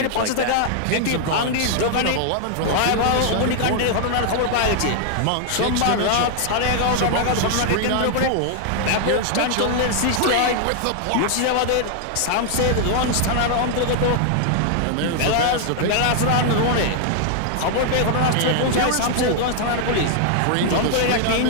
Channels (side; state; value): both; different; correlation 0.00